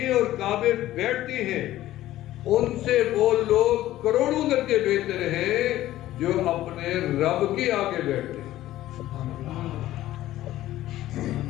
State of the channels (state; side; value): quieter; right; 14.6 dB